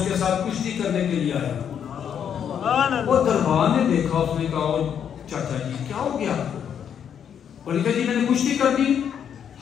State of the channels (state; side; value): quieter; right; 8.4 dB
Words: کے ساتھ کشتی کرنے کے لیے آیا. وہ دربار نے دیکھا, اس نے کہا چاچا جی کیا ہو گیا؟ اور کہا جی میں نے کشتی کر دی.